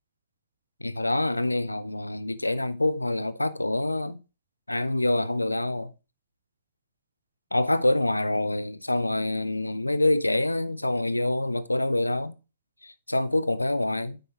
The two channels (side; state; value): both; inverted; correlation -0.98